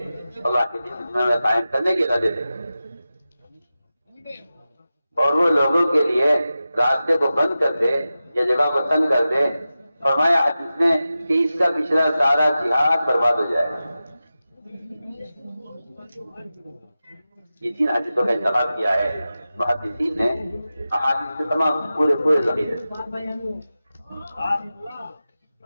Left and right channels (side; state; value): both; inverted; correlation -0.94